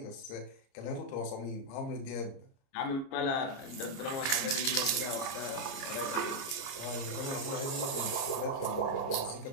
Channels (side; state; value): right; late; 30 ms